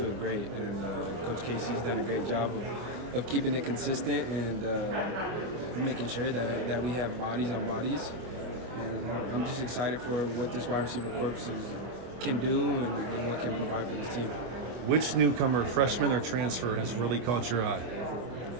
great, and Coach Casey's done a great job of keeping it consistent and making sure that we have bodies on bodies. And I'm just excited for what this wide receiver corps can do and what can provide for this team. Which newcomer, freshman or transfer, has really caught your eye?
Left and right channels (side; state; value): left; late; 25 ms